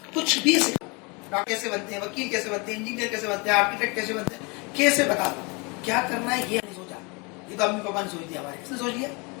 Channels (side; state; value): right; quieter; 29.7 dB